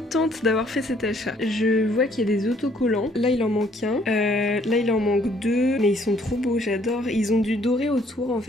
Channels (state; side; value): normal; both; correlation 0.63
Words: d'avoir fait cet achat. Je vois qu'il y a des autocollants. Là il en manque un. Là il en manque deux. Mais ils sont trop beaux, j'adore. Ils ont du doré autour en